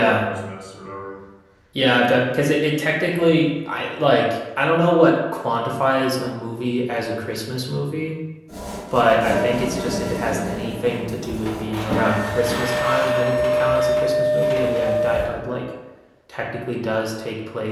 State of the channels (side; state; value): both; identical; correlation 1.00